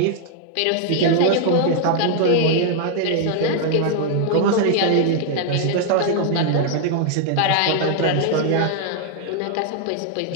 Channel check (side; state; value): both; different; correlation 0.00